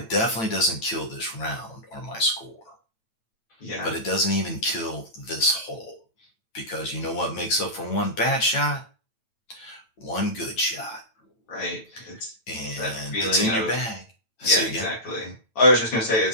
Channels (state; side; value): late; right; 9.0 ms